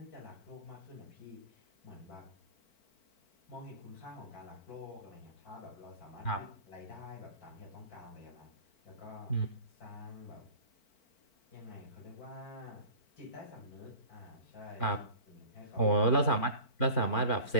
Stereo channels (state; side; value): late; right; 4.5 ms